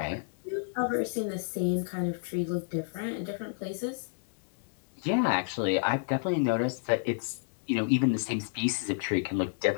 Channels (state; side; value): silent; right; digital silence